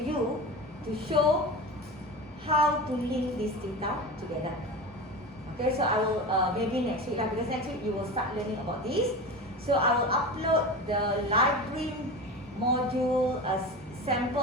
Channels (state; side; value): normal; both; correlation 0.28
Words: you to show how to link this data together. Okay, so I will maybe next week because next week you will start learning about this. So I will upload the library module as